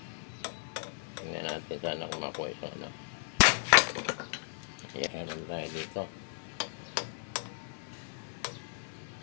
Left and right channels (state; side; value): silent; right; digital silence